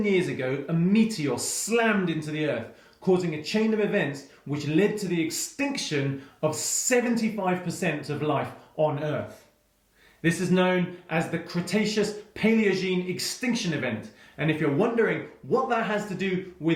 years ago, a meteor slammed into the Earth, causing a chain of events which led to the extinction of 75% of life on Earth. This is known as the Cretaceous-Paleogene Extinction Event, and if you're wondering what that has to do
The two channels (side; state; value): both; identical; correlation 1.00